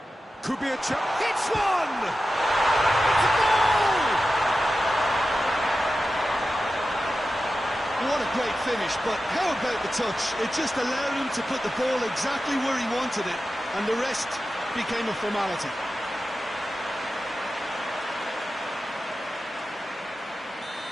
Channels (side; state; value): both; normal; correlation 0.93